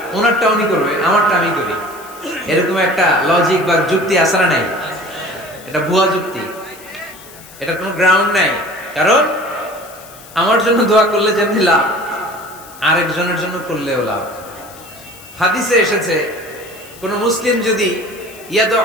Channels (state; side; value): noise; left; hiss, 20 dB below the sound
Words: ওনারটা উনি করবে, আমারটা আমি করি। এরকম একটা লজিক বা যুক্তি আসরা নাই, এটা ভুয়া যুক্তি, এটা কোনো গ্রাউন্ড নাই। কারণ আমার জন্য দোয়া করলে যেমনি লাভ, আরেকজনের জন্য করলেও লাভ। হাদিসে এসেছে কোন মুসলিম যদি